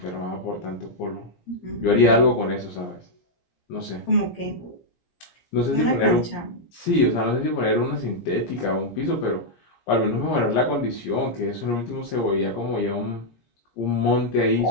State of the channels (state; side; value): late; right; 17 ms